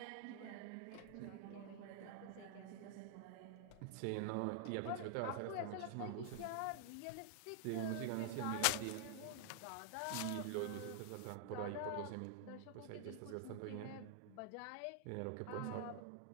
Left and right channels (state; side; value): different; both; correlation -0.01